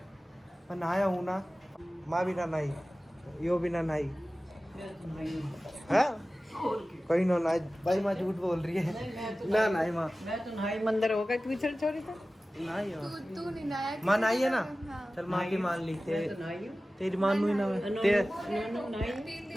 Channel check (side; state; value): both; normal; correlation 0.96